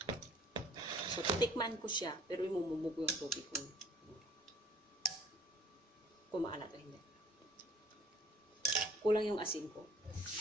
So, titikman ko siya, pero imumumog yung tubig ko. Kung maalat o hindi. Kulang yung asin ko.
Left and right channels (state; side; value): normal; both; correlation 0.56